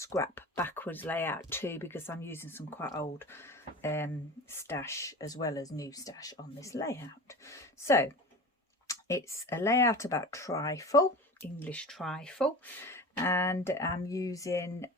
backwards layout too, because I'm using some quite old stash as well as new stash on this layout. So it's a layout about trifle, English trifle, and I'm using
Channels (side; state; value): both; normal; correlation 0.33